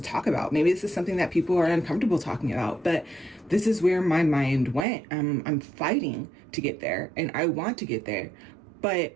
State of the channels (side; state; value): left; drops out; at 4.9 s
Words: talk about. Maybe this is something that people are uncomfortable talking about, but this is where my mind went. I'm fighting to get there, and I want to get there, but